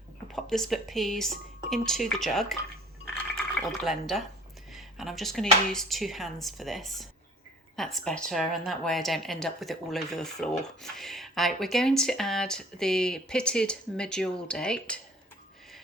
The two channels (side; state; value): both; normal; correlation 0.50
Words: I'll pop the split peas into the jug or the blender, and I'm just going to use 2 hands for this. That's better, and that way I don't end up with it all over the floor. Right, we're going to add the pitted medjool date.